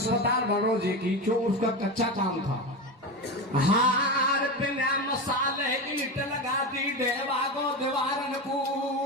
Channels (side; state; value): both; normal; correlation 0.20